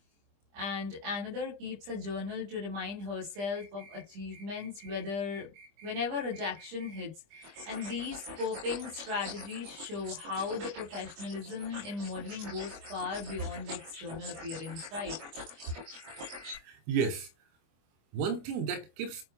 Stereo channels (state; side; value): late; left; 25 ms